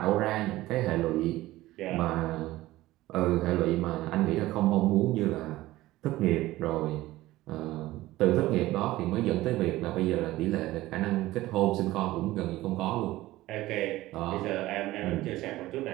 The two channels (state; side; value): quieter; left; 17.1 dB